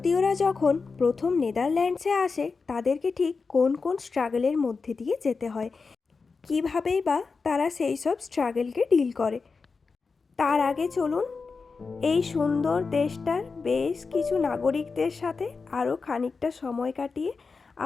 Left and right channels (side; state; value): right; quieter; 4.6 dB